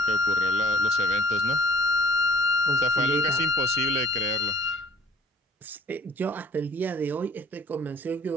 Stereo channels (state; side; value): normal; both; correlation 0.55